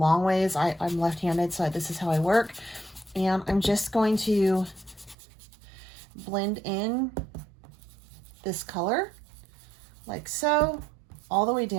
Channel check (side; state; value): left; drops out; at 5.2 s